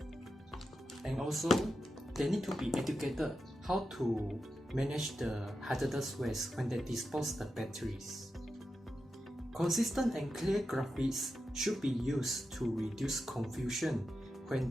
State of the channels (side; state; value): both; normal; correlation 0.89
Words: And also, they need to be educated how to manage the hazardous waste when they dispose the batteries. Consistent and clear graphics should be used to reduce confusion when